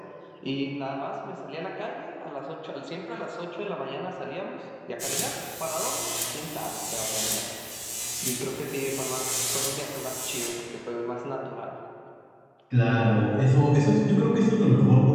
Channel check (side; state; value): both; identical; correlation 1.00